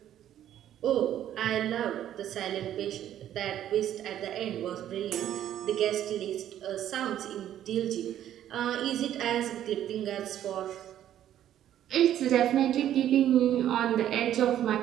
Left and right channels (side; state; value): left; quieter; 11.4 dB